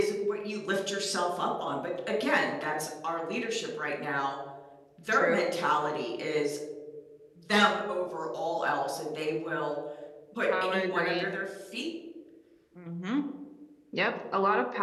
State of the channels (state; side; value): identical; both; correlation 1.00